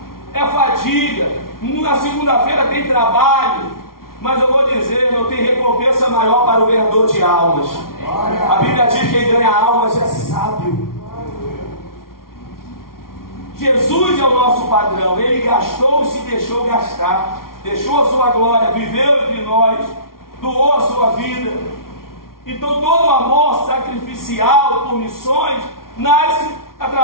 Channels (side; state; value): right; late; 0.93 ms